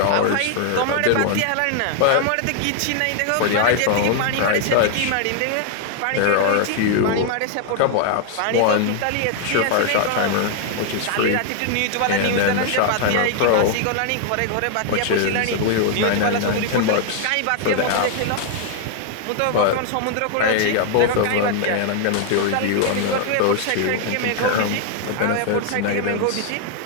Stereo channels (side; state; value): both; different; correlation 0.00